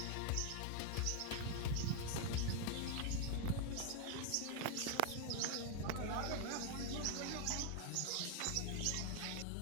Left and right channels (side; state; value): both; different; correlation 0.00